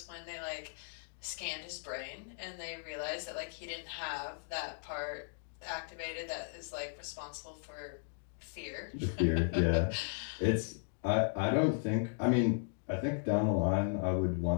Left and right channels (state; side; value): silent; right; digital silence